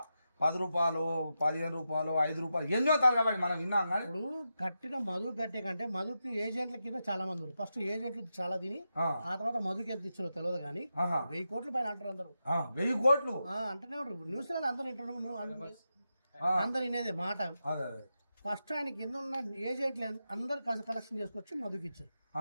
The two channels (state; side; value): inverted; both; correlation -0.89